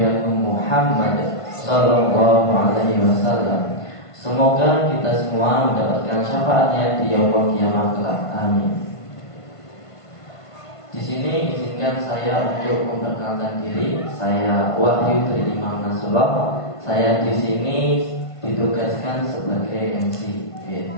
Agung Muhammad Sallallahu Alaihi Wasallam. Semoga kita semua mendapatkan syafaatnya di yaumul kiamat kelak. Amin. Di sini izinkan saya untuk memperkenalkan diri. Saya Wahyu dari Imam Nasrullah. Saya di sini ditugaskan sebagai MC.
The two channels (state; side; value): late; right; 1.5 ms